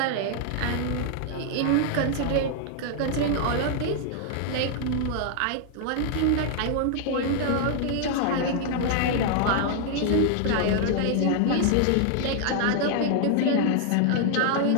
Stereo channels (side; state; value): both; different; correlation 0.00